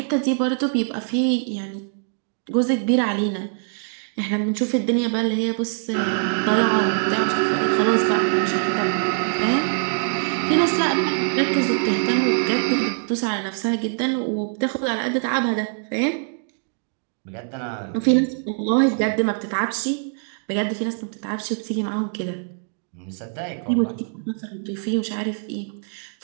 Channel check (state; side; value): silent; left; 63 dB below the other